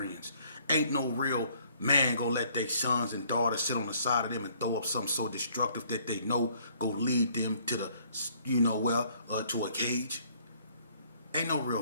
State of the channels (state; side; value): inverted; both; correlation -0.62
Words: Ain't no real man go let their sons and daughters sit on the side of them and throw up something so destructive that they know go lead them to the, to a cage. Ain't no real